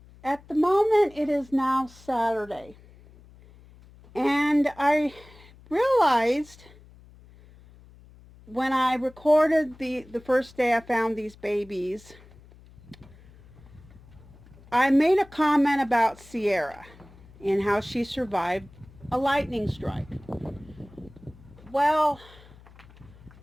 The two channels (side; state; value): left; noise; hum, 23 dB below the sound